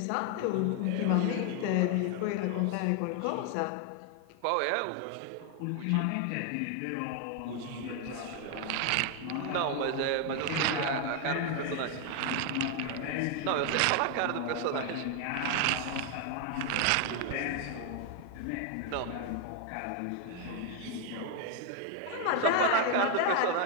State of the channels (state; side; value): different; both; correlation 0.01